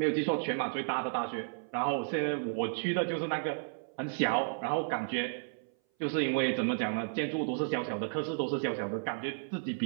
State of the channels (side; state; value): left; silent; 56 dB below the other